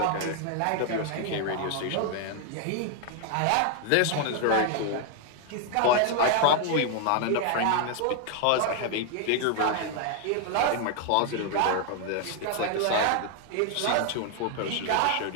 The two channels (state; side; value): different; both; correlation 0.00